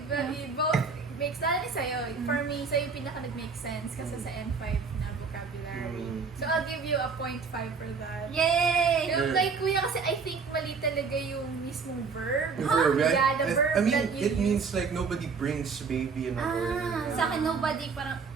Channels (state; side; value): quieter; left; 5.1 dB